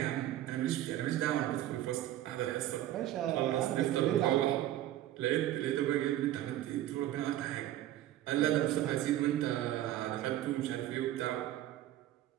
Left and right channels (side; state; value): left; quieter; 13.4 dB